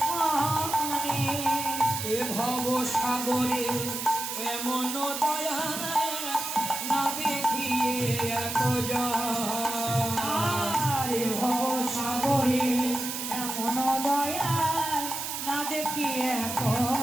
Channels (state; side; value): noise; right; hiss, 5 dB below the sound